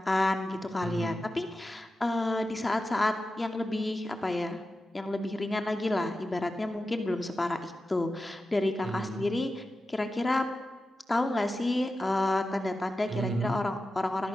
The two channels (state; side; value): normal; both; correlation 0.92